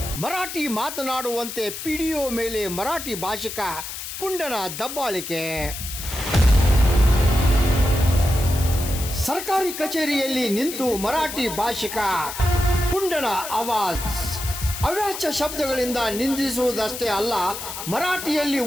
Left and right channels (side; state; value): left; noise; hiss, 8 dB below the sound